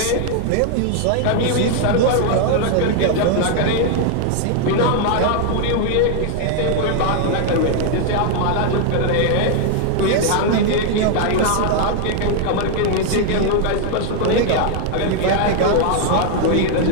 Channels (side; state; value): both; different; correlation 0.00